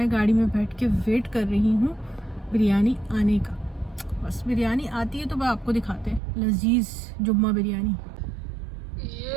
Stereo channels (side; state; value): left; drops out; at 6.2 s